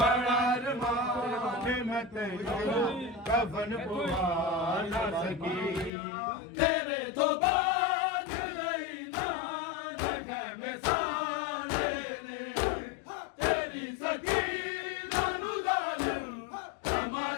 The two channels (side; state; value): right; drops out; at 5.9 s